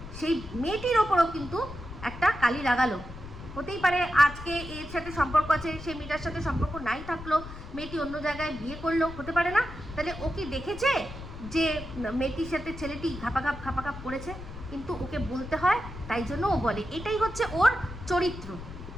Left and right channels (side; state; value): left; noise; rumble, 12 dB below the sound